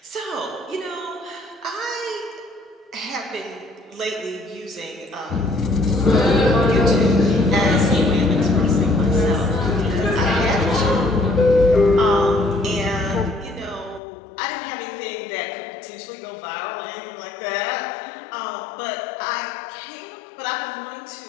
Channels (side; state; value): right; drops out; at 14.0 s